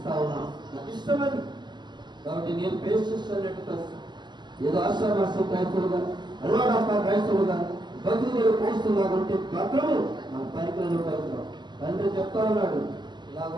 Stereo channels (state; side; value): late; left; 0.21 ms